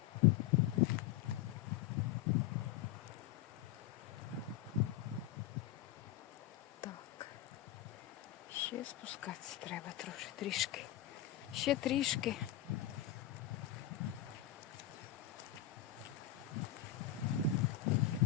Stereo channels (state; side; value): quieter; right; 12.1 dB